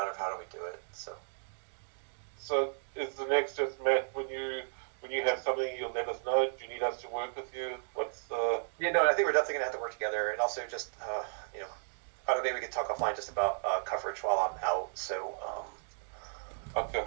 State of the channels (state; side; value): silent; left; digital silence